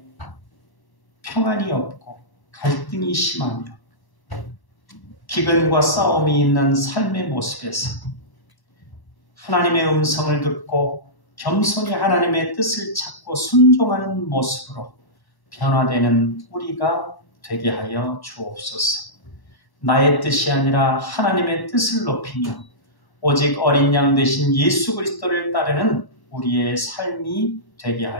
평안이 없고 갈등이 심하며 기근과 싸움이 있는 삶의 모습에서 하나님의 음성을 듣고 겸손히 하나님의 뜻을 찾고 순종하는 모습으로 변화되는 우리가 되게 하여 주옵소서. 나의 뜻이 아니라 하나님의 뜻을 높이며 오직 어린 양 되신 예수 그리스도를 따르는 우리의 삶이 되게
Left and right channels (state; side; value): late; right; 1.1 ms